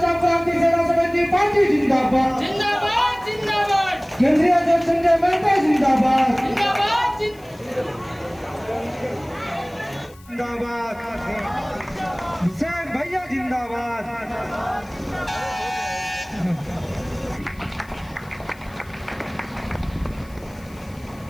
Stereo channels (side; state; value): left; noise; hiss, 26 dB below the sound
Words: क्रांति सेना समिति पार्टी जिंदाबाद जिंदाबाद जिंदाबाद। केंद्रीय अध्यक्ष संजय मेहता जिंदाबाद जिंदाबाद जिंदाबाद। हुसैन भैया जिंदाबाद।